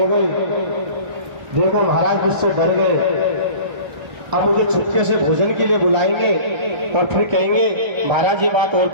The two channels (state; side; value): late; left; 1.3 ms